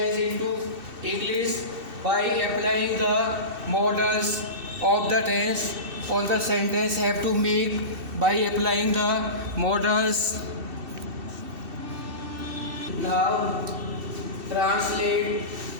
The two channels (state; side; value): late; left; 2.7 ms